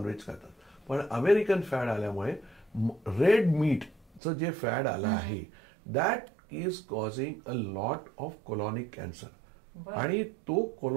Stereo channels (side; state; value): left; drops out; at 4.2 s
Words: खातात. पण अमेरिकन फॅड आल्यामुळे रेड मीटचं जे फॅड आलं आहे that is causing a lot of colonic cancer. आणि तो